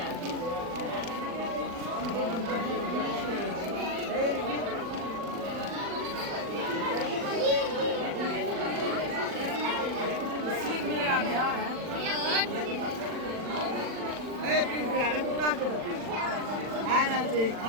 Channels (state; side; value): late; left; 40 ms